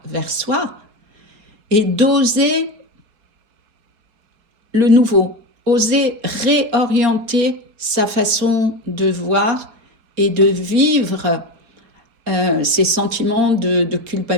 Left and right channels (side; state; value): left; late; 4.4 ms